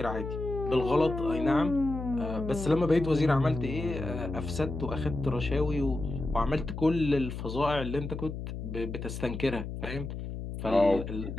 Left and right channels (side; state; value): left; noise; hum, 7 dB below the sound